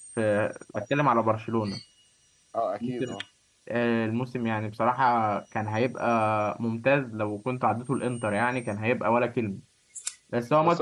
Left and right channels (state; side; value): identical; both; correlation 1.00